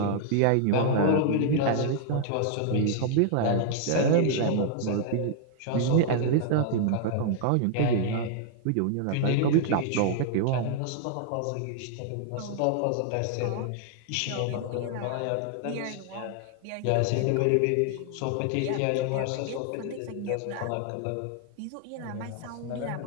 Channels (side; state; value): both; different; correlation 0.00